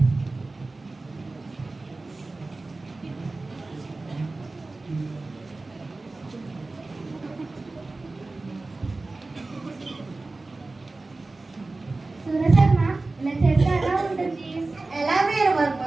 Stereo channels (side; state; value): left; quieter; 3.3 dB